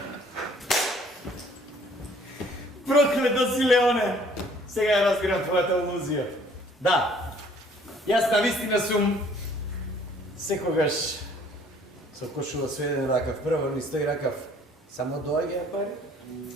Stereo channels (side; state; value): both; normal; correlation 0.57